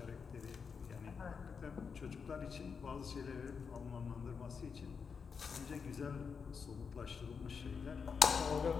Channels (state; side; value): quieter; right; 5.9 dB